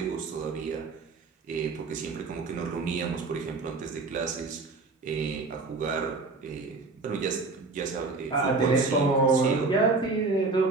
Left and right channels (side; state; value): left; quieter; 3.8 dB